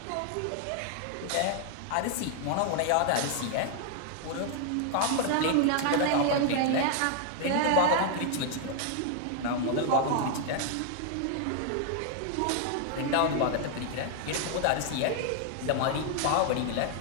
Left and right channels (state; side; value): different; both; correlation 0.00